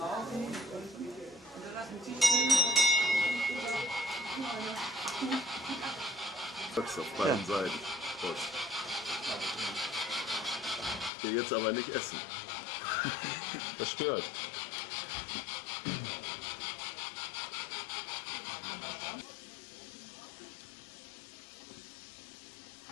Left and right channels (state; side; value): drops out; right; at 11.1 s